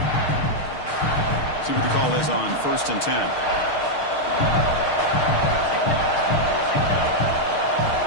See what the call is on first and 10.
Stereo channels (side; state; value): right; late; 6.5 ms